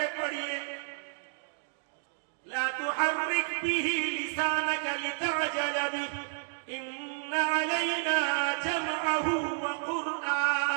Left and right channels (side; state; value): left; silent; digital silence